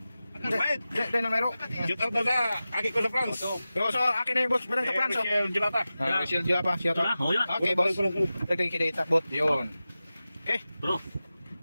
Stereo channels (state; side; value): inverted; both; correlation -0.95